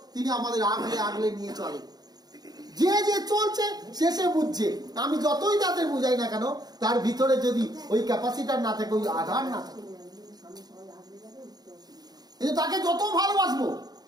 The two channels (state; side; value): late; left; 0.19 ms